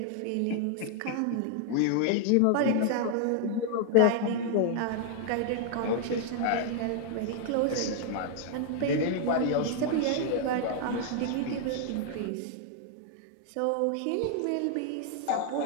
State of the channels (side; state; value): both; different; correlation 0.00